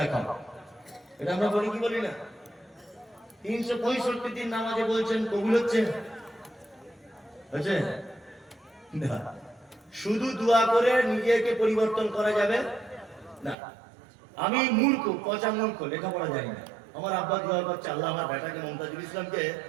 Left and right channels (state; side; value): drops out; left; at 13.6 s